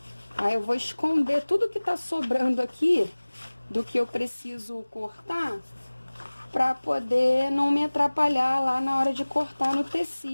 Aí, eu vou esconder tudo que tá sobrando aqui, do que eu preciso cortar, pra poder não me atrapalhar lá na hora de cortar no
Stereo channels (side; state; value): both; inverted; correlation -1.00